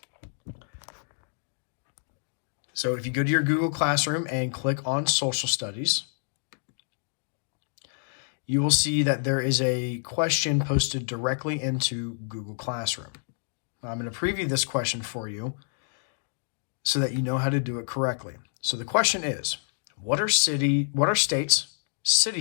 So if you go to your Google Classroom and click on Social Studies, you will see that there is a question posted directly into Google Classroom. Now, I'm going to preview this question for you so that you know how to do it correctly. So the question is, what are states,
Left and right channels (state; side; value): silent; right; digital silence